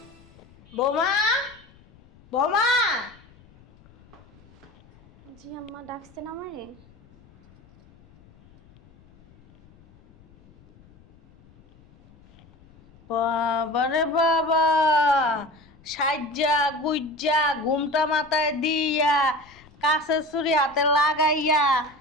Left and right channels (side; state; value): left; noise; rumble, 27 dB below the sound